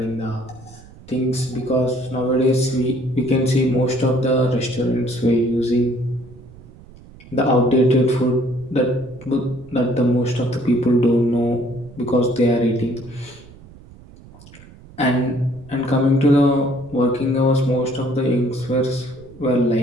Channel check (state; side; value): noise; right; rumble, 21 dB below the sound